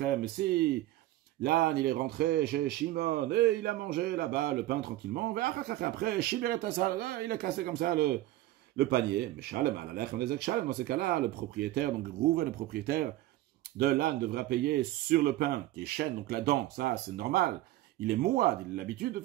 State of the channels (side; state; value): left; quieter; 16.0 dB